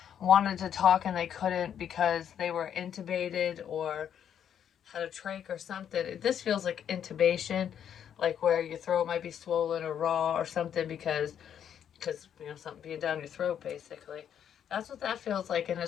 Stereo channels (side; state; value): right; quieter; 9.0 dB